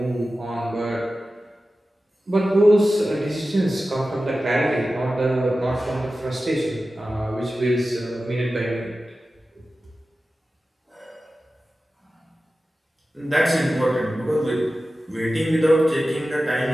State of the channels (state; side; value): normal; both; correlation 0.94